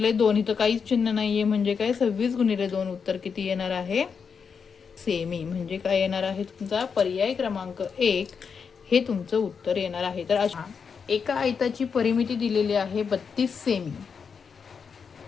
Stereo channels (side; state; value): right; quieter; 6.1 dB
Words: 2. इथं काहीच चिन्ह नाहीये म्हणजे काय 26 गुणिले 2 उत्तर किती येणार आहे सेमी. म्हणजे काय येणार आहे तुमचा पर्याय क्रमांक 1 हे तुमचं उत्तर येणार आहे. तर अशा एका आयताची परिमिती दिलेली आहे 32 सेमी.